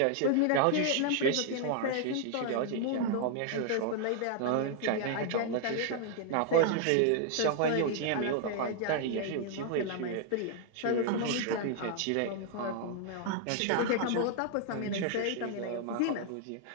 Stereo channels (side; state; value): both; different; correlation 0.00